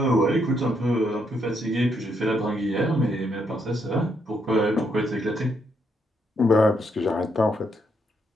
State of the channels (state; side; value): normal; both; correlation 0.76